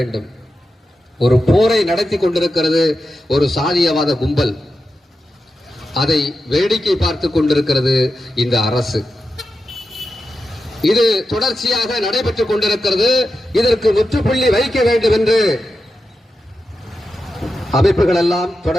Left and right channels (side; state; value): both; normal; correlation 0.90